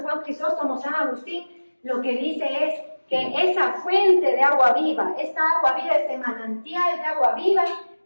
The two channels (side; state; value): both; inverted; correlation -1.00